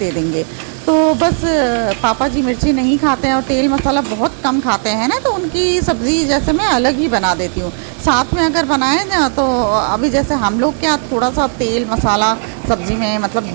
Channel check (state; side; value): silent; left; digital silence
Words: देंगे। तो बस पापा जी मिर्ची नहीं खाते हैं और तेल मसाला बहुत कम खाते हैं ना, तो उनकी सब्ज़ी जैसे मैं अलग ही बना देती हूँ। साथ में अगर बनाए ना तो अभी जैसे हम लोग क्या थोड़ा सा तेल मसाला सब्ज़ी में, मतलब